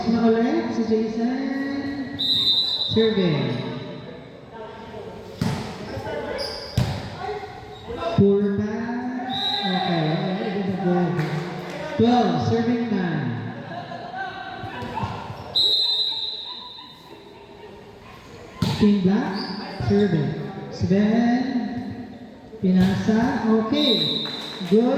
na ulit si Jason. Serving. Poor pass. Okay, it is a goal. 12, serving 9. Team Black, serving. Sven, pinasa. Okay,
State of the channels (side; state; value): both; identical; correlation 1.00